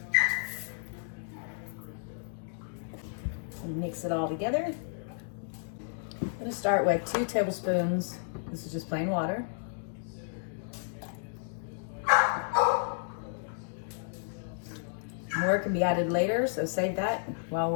And mix it all together. I'm going to start with 2 tablespoons. This is just plain water. More can be added later, so save that while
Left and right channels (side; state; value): right; silent; digital silence